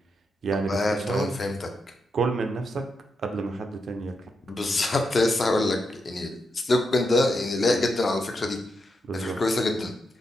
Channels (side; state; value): both; normal; correlation 0.84